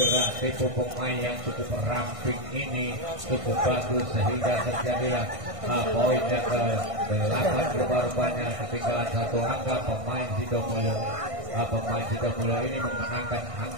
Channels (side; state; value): left; late; 1.5 ms